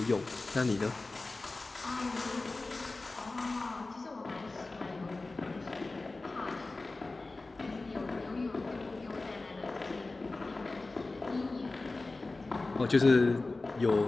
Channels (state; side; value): quieter; right; 3.3 dB